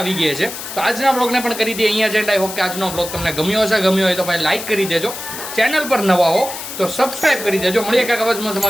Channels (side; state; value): left; noise; hiss, 9 dB below the sound